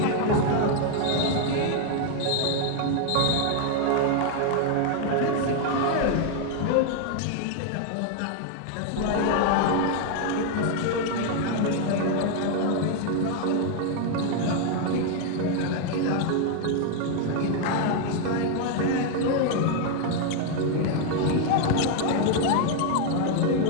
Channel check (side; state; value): both; different; correlation 0.00